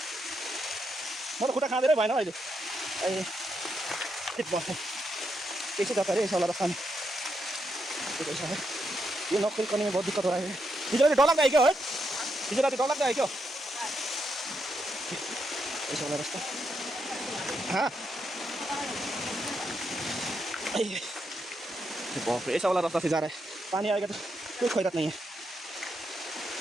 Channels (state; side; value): normal; both; correlation 0.81